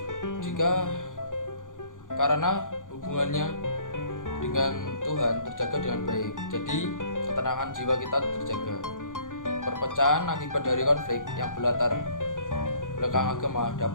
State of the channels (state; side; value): late; right; 0.88 ms